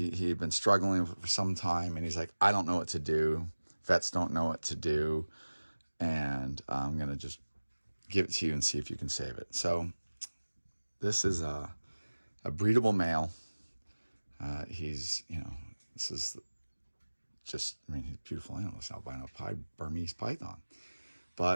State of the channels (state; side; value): inverted; both; correlation -1.00